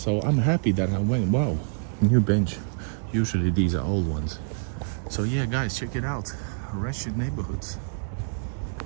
I'm happy that I went. Wow, new bench. Usually these are old ones. So yeah, guys, check it out. Russian neighborhoods.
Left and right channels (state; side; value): silent; left; 61 dB below the other